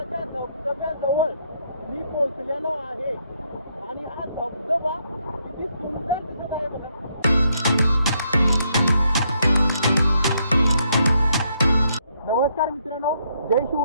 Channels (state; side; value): inverted; both; correlation -0.74